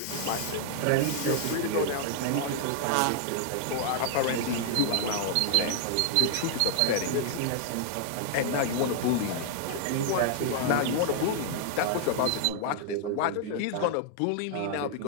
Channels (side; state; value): both; different; correlation 0.00